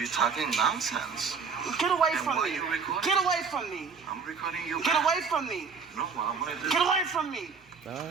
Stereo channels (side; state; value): left; quieter; 5.5 dB